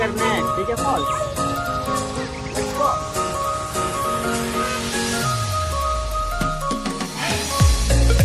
ठीक है फॉल्स। Let's go.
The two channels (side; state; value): both; identical; correlation 1.00